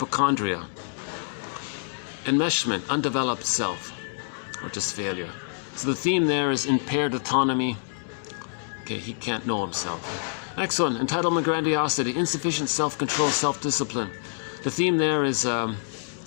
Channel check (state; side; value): silent; right; digital silence